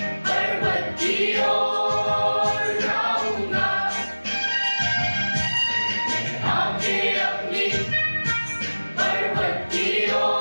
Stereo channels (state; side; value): inverted; both; correlation -1.00